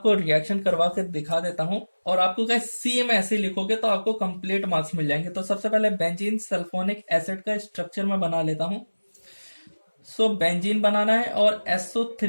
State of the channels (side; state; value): both; inverted; correlation -1.00